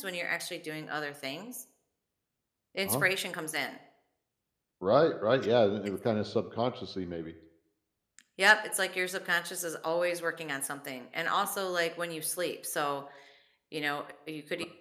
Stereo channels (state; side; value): identical; both; correlation 1.00